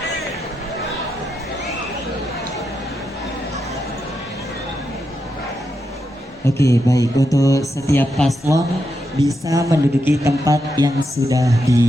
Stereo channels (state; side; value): normal; both; correlation 0.84